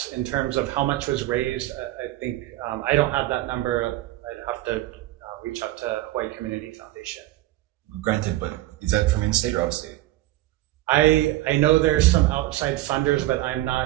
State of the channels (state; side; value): quieter; left; 16.3 dB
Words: in terms of how much was raised. I think I don't have that number. I'd have to reach out to Hawaii Community Foundation. Granted, but is that from in-state or out-state? I know there's some outside funders, but I'm